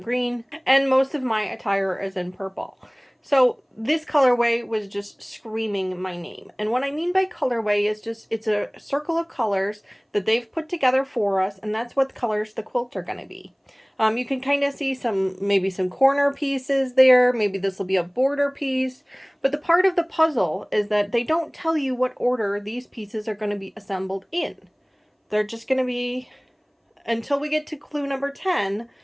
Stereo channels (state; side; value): identical; both; correlation 1.00